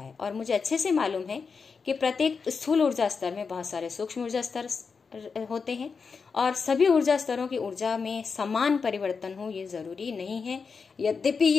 है। और मुझे अच्छे से मालूम है कि प्रत्येक स्थूल ऊर्जा स्तर में बहुत सारे सूक्ष्म ऊर्जा स्तर होते हैं और सभी ऊर्जा स्तरों की ऊर्जा में समान परिवर्तन हो ये जरूरी नहीं है, यद्यपि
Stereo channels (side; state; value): right; quieter; 5.3 dB